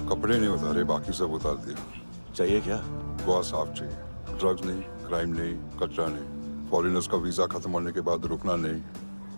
कपड़े नहीं उतारे, बाकी सब उतार दिया। चाहिए क्या? गोवा साफ चाहिए। ड्रग्स नहीं, क्राइम नहीं, कचरा नहीं। फॉरेनर्स का वीजा खत्म होने के बाद रुकना नहीं।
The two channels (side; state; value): both; inverted; correlation -1.00